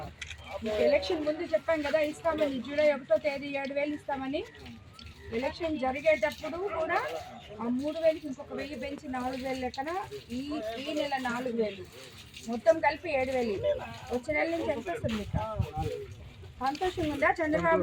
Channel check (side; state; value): both; identical; correlation 1.00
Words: ఎలక్షన్ ముందు చెప్పాం కదా, ఇస్తామని. జూలై 1వ తేదీ 7,000 ఇస్తామని. ఎలక్షన్ జరిగేటప్పుడు కూడా ఆ 3,000కి ఇంకొక 1,000 పెంచి 4,000 లెక్కన ఈ నెల 4,000 మొత్తం కలిపి 7,000. వచ్చే నెల నుంచి ఎంత వస్తుంది? సంతోషంగా ఉందా